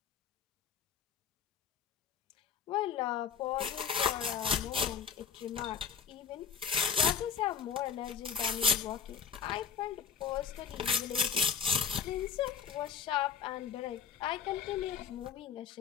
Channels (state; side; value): quieter; right; 7.1 dB